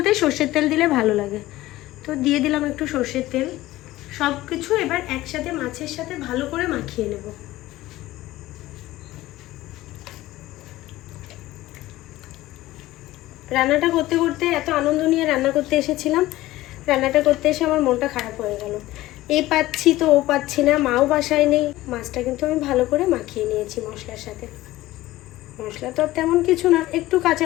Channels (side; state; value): right; quieter; 16.8 dB